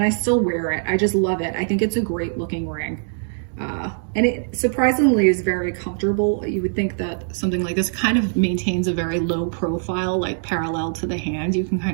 I still wear it. I just love it. I think it's a great looking ring. And it surprisingly is very comfortable. You would think that something like this kind of maintains a very low profile, like parallel to the hand. You can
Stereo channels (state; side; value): silent; left; digital silence